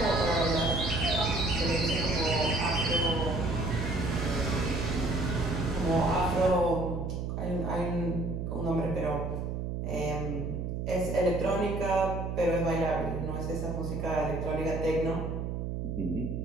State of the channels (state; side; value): noise; right; hum, 3 dB below the sound